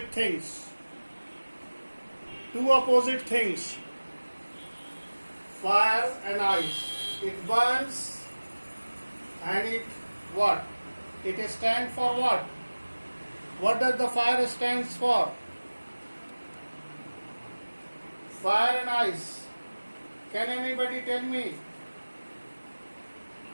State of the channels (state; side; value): inverted; both; correlation -1.00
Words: things. Two opposite things. Fire and ice. It burns and it what? It stands for what? What does the fire stands for? Fire and ice. Can anybody tell me?